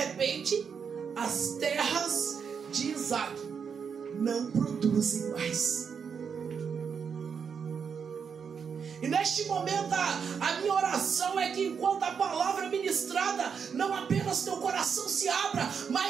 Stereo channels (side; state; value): left; quieter; 6.6 dB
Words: as terras de Isaque não produzem mais. E neste momento a minha oração é que enquanto a palavra é ministrada, não apenas teu coração se abra,